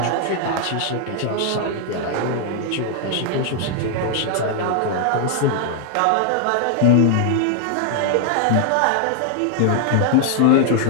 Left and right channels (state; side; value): different; both; correlation 0.00